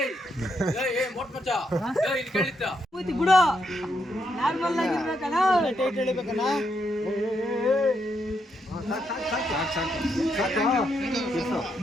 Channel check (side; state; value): both; normal; correlation 0.79